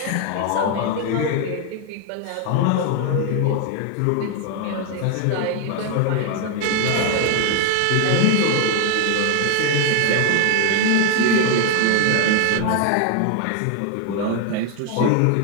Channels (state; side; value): different; both; correlation 0.01